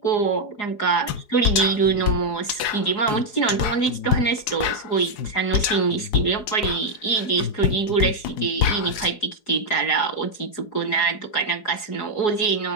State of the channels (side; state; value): right; late; 4.8 ms